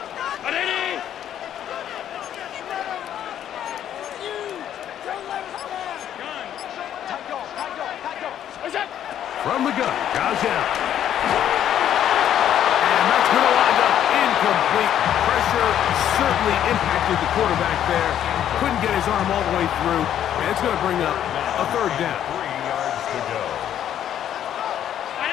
From the gun, goes out. And that's going to wind up incomplete. Pressure certainly impacted the quarterback there. Couldn't get his arm all the way through. And it's going to bring up a 3rd down. 3 yards to go.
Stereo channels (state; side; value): quieter; right; 10.5 dB